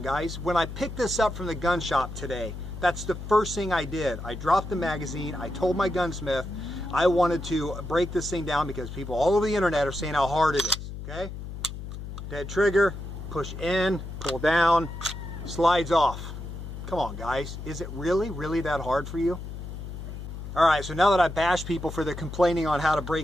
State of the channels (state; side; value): noise; left; hum, 9 dB below the sound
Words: guys. When I picked this up from the gun shop today, that's the first thing I did. I dropped the magazine, I told my gunsmith I wanted to break this thing down because people all over the internet are saying how hard it is, okay? Dead trigger, push in, pull down, slides off. Come on, guys. Is it really that hard for you? All right, so now that I bash people for their complaining on how to